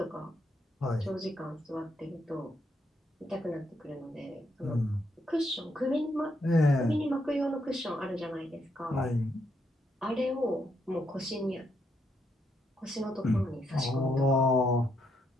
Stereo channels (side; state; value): both; normal; correlation 0.77